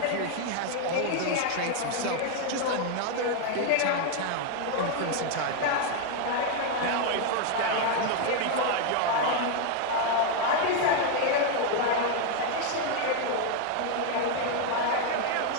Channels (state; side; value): different; both; correlation 0.00